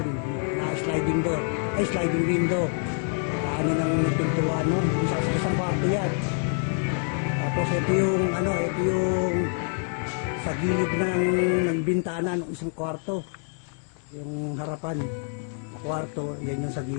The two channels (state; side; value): quieter; right; 39.2 dB